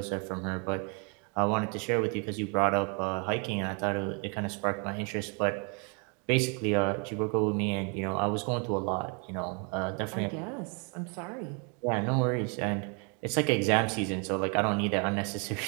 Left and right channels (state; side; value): quieter; left; 36.4 dB